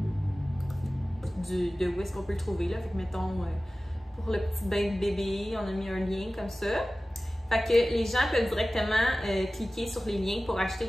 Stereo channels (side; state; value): both; normal; correlation 0.97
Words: de où est-ce qu'on peut le trouver, là. Fait que mettons, pour le petit bain de bébé, on a mis un lien comme ça. Fait que les gens peuvent directement cliquer sur les liens pour acheter